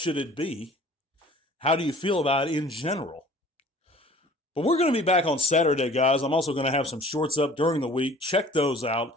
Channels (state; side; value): normal; both; correlation 0.49